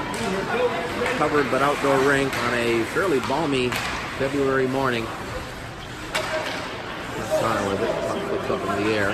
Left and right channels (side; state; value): both; identical; correlation 1.00